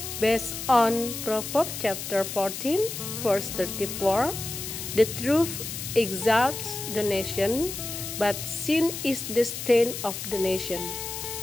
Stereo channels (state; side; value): noise; left; hiss, 7 dB below the sound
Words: Based on Proverbs chapter 14 verse 34, the truth exalts the nation, but sin is the stain of the nation.